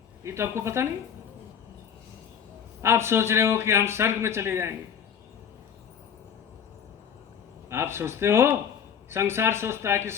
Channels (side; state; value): right; quieter; 8.1 dB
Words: ये तो आपको पता नहीं। आप सोच रहे हो कि हम स्वर्ग में चले जाएंगे, आप सोचते हो, संसार सोचता है कि